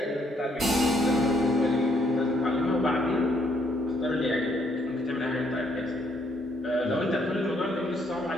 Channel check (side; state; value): both; normal; correlation 0.70